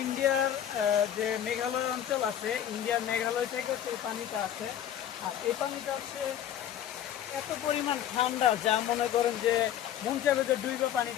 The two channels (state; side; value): quieter; right; 10.6 dB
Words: ইন্ডিয়ার যে মেঘালয় অঞ্চল আছে, ইন্ডিয়ার মেঘালয় থেকে হচ্ছে এই পানিটা আসে। আর এই পানিটা হচ্ছে এত পরিমাণ ঠান্ডা, যা মনে করেন যে মন চাইবে যে ডুইবা